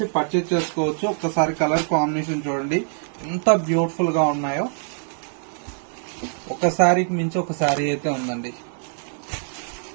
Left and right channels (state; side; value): silent; left; 63 dB below the other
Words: పర్చేజ్ చేసుకోవచ్చు. ఒక్కసారి కలర్ కాంబినేషన్ చూడండి ఎంత బ్యూటిఫుల్ గా ఉన్నాయో. ఒక శారీకి మించి ఒక శారీ అయితే ఉందండి.